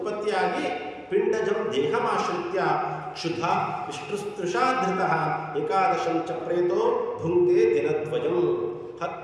ಪಿಂಡಜಂ ದೇಹಮಾಶ್ರಿತ್ಯ ಕ್ಷುಧ ವಿಷ್ಣುಸ್ತೃಷಾಧೃತಃ ಏಕಾದಶಂ ಚ ಪ್ರೇತೋ ಭುಂಕ್ತೆ ದಿನದ್ವಯಂ.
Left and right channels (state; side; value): identical; both; correlation 1.00